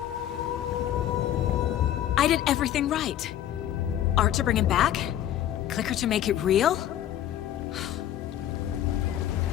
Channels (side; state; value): right; quieter; 11.7 dB